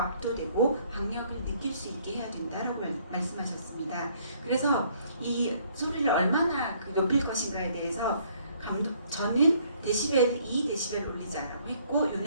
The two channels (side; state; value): both; inverted; correlation -0.64